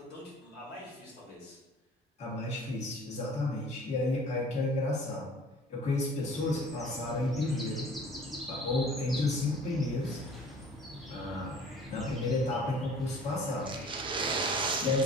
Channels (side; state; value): both; normal; correlation 0.48